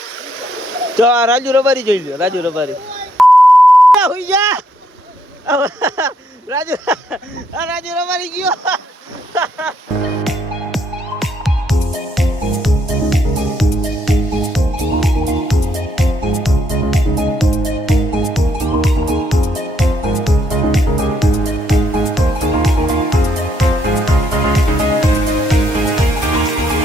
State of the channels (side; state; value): both; normal; correlation 0.73